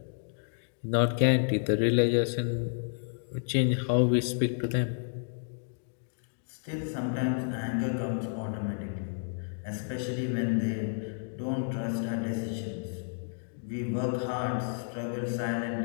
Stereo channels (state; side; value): silent; right; digital silence